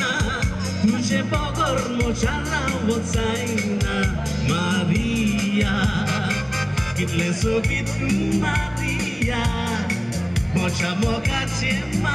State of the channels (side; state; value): both; identical; correlation 1.00